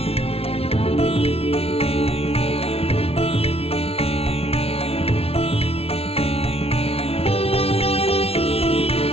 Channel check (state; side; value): late; right; 0.29 ms